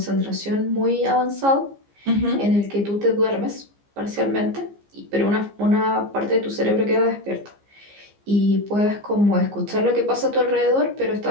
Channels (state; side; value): late; left; 15 ms